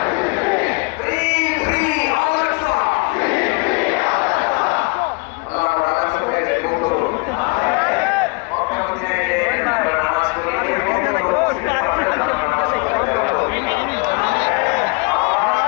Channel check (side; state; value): right; quieter; 30.3 dB